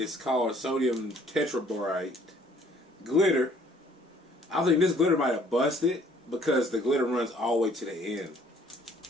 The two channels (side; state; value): both; normal; correlation 0.59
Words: called sodium tetraborate. Glitter. I think this glitter might have busted because the glitter runs all the way to the end.